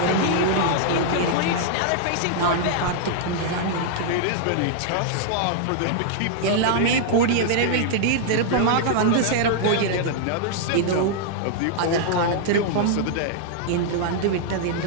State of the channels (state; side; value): different; both; correlation -0.01